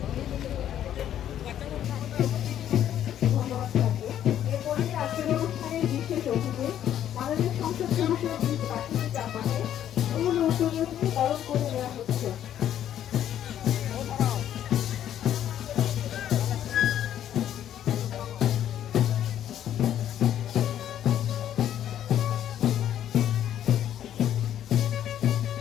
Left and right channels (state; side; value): quieter; right; 10.8 dB